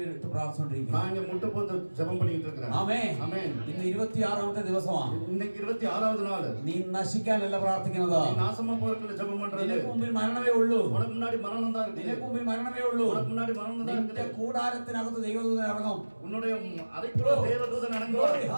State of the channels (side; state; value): both; inverted; correlation -1.00